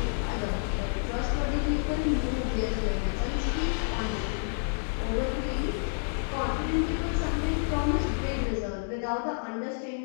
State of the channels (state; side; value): silent; right; digital silence